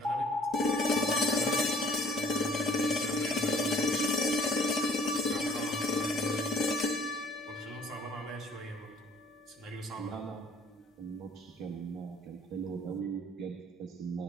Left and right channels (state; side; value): normal; both; correlation 0.56